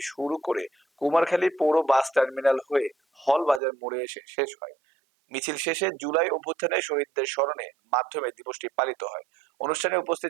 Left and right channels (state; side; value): drops out; left; at 3.6 s